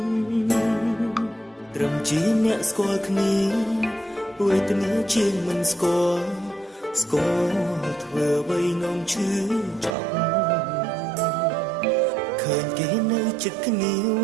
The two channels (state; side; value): drops out; left; at 10.0 s